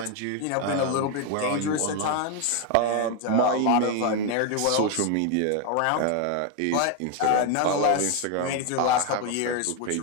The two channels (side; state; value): both; different; correlation 0.01